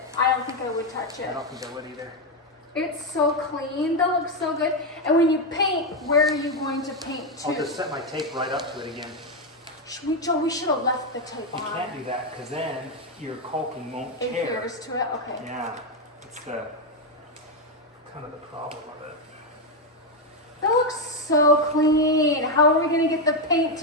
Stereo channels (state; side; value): normal; both; correlation 0.06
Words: I don't think I would touch I it. don't think I would either. It's so clean. That looks so good. And when you paint, where are you going to paint to? I'll just set my tape right up to it again. Joe, we should have left the tape You on. can't do that because then your caulking won't It tear. adheres to it. Okay. Yeah, it's the kind of the problem of it. That looks so clean. How are we gonna get the paint